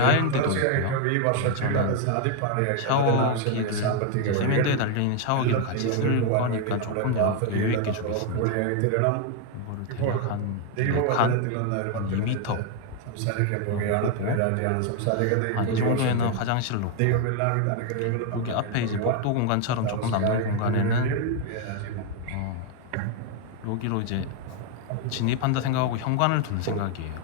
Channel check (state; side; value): different; both; correlation 0.01